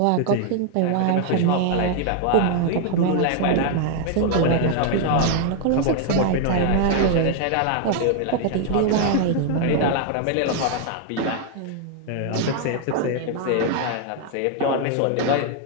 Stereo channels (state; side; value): different; both; correlation 0.00